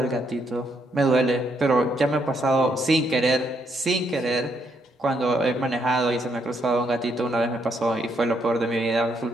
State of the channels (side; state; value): both; normal; correlation 0.75